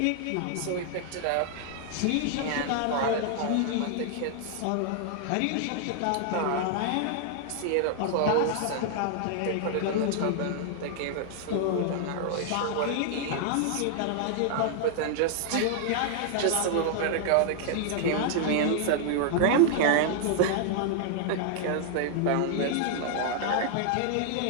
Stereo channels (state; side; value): different; both; correlation 0.00